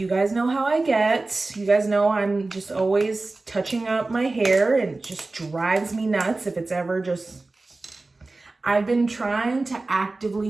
guys know how I get. You guys know I'm just always touching up my hair, and it just drives me nuts if it's ever just... I've been trying to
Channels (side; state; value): left; quieter; 3.3 dB